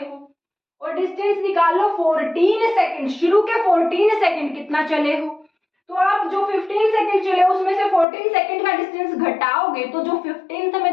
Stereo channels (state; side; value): drops out; right; at 8.1 s